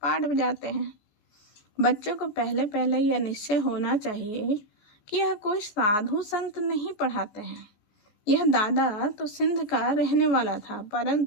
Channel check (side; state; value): right; late; 14 ms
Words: बजाते हैं। बच्चों को पहले पहले यह निश्चय होना चाहिए कि यह कोई साधु संत नहीं पढ़ाते हैं। यह दादा तो सिंध का रहने वाला था,